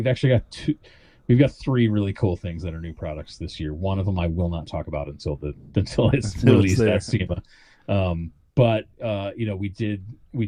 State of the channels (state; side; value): identical; both; correlation 1.00